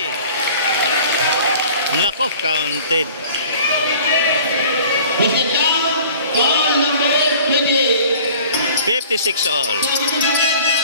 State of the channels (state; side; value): inverted; both; correlation -0.47